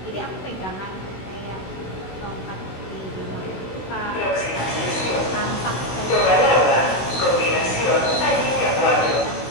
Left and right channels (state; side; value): late; right; 16 ms